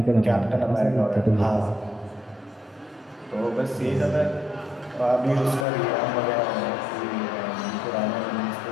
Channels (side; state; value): right; drops out; at 5.7 s